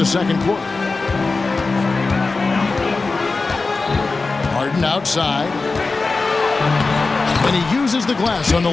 second quarter. Harden Harden outside. And he uses the glass on the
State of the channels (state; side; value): quieter; right; 3.9 dB